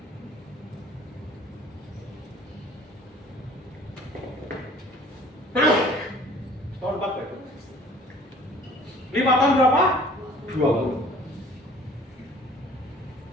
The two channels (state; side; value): normal; both; correlation 0.51